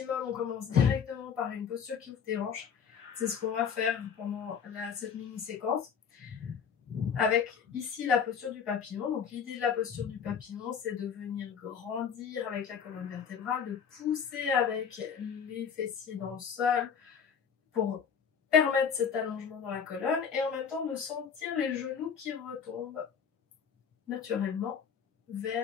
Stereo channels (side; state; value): right; quieter; 7.1 dB